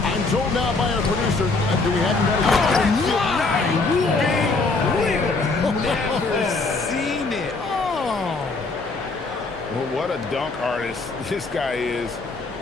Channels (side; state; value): right; quieter; 3.6 dB